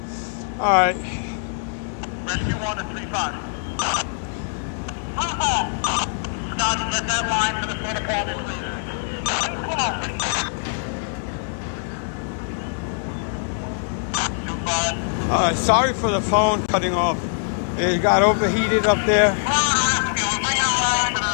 Alright. Rescue 1 to 3-5. Scotty, get that line to the front apartment, please. 2-5. Alright, sorry for the phone cutting off. It got overheated up there. Rescue, we're bringing a line to the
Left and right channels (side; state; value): right; silent; digital silence